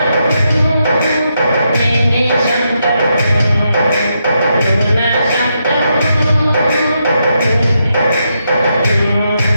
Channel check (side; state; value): both; inverted; correlation -0.82